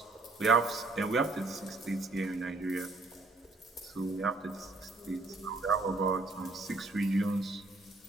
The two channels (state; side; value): quieter; left; 3.4 dB